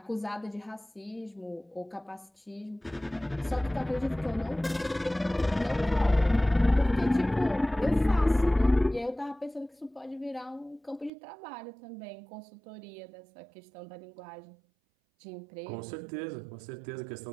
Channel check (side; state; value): left; drops out; at 11.1 s